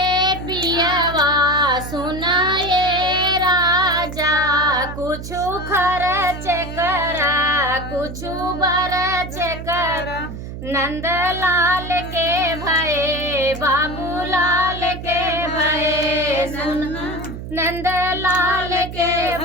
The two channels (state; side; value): noise; right; hum, 9 dB below the sound